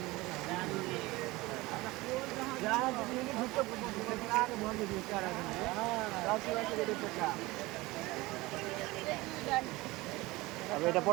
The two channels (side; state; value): left; quieter; 21.0 dB